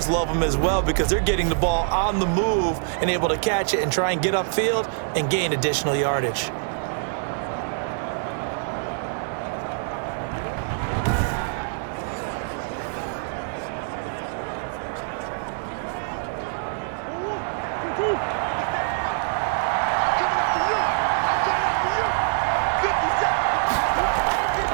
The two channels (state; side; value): silent; left; 62 dB below the other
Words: love them as well because they're getting the ball on the move and able to catch it and try and get upfield and gain additional yardage.